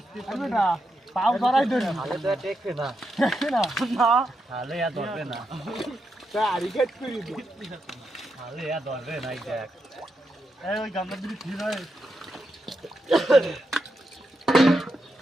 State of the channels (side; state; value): both; normal; correlation 0.84